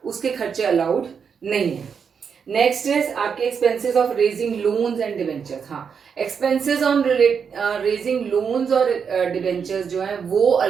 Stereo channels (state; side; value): quieter; left; 6.6 dB